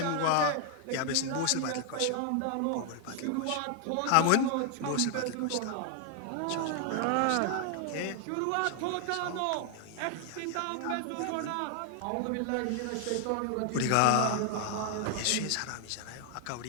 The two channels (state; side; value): different; both; correlation 0.00